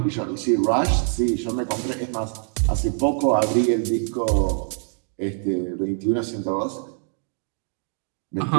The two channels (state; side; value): silent; left; 58 dB below the other